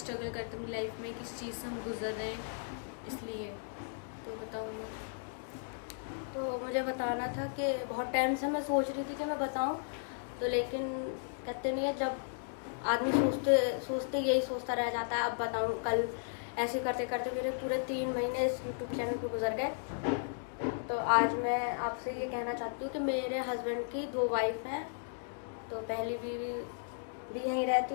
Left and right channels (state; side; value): silent; right; digital silence